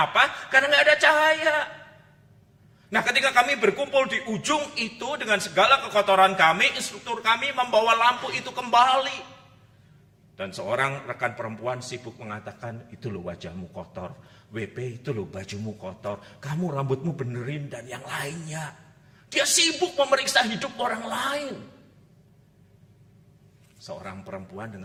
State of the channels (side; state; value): both; identical; correlation 1.00